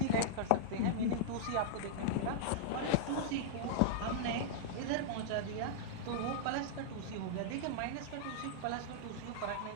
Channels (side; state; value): both; different; correlation -0.02